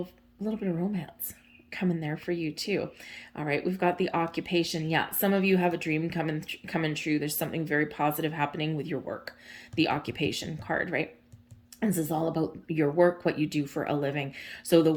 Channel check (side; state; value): both; identical; correlation 1.00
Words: bit of romance coming there for you too. All right. We've got the occupation. Yeah. Some of you have a dream coming true. There's something very positive happening with your work. The occupation card, right? This is all about your work, what you do for a living. So the